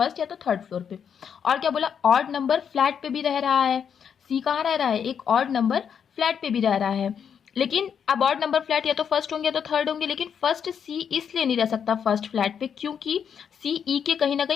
या तो थर्ड फ्लोर पे। और क्या बोला, ऑड नंबर फ्लैट पे भी रह रहा है। सी कहाँ रह रहा है, एक ऑड नंबर फ्लैट पे भी रह रहा है। लेकिन अब ऑड नंबर फ्लैट या तो फर्स्ट होंगे या तो थर्ड होंगे, लेकिन फर्स्ट सी इसलिए नहीं रह सकता फर्स्ट फ्लैट पे क्योंकि सी ई के कहीं ना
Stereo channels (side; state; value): right; quieter; 7.6 dB